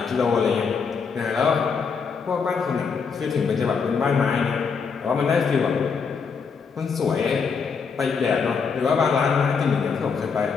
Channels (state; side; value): quieter; right; 5.7 dB